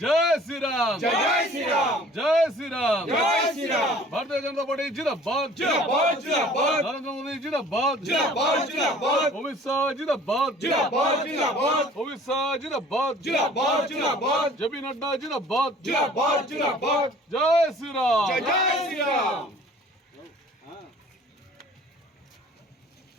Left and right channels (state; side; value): normal; both; correlation 0.50